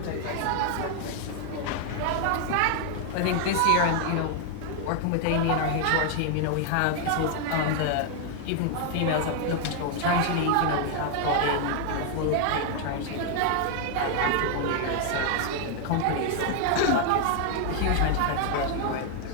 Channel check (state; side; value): different; both; correlation 0.00